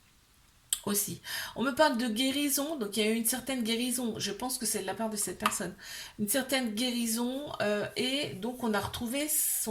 aussi. On me parle de guérison, donc il y a eu une certaine guérison, je pense que c'est de la part de cette personne. Une certaine guérison, et donc on a retrouvé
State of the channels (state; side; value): identical; both; correlation 1.00